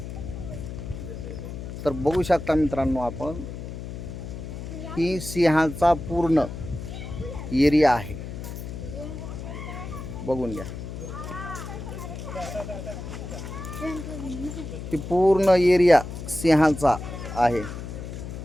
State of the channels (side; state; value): left; noise; hum, 8 dB below the sound